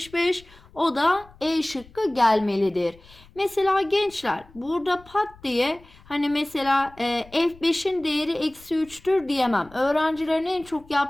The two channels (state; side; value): noise; left; rumble, 25 dB below the sound